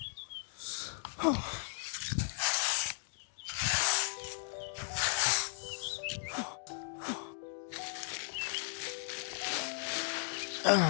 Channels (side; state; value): right; silent; digital silence